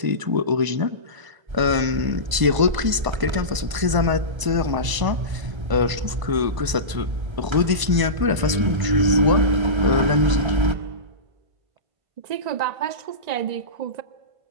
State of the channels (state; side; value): late; left; 1.0 ms